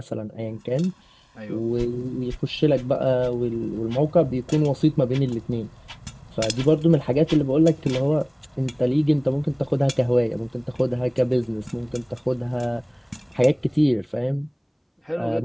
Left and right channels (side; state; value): both; identical; correlation 1.00